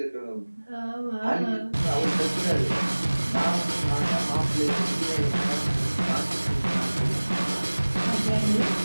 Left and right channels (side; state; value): both; inverted; correlation -1.00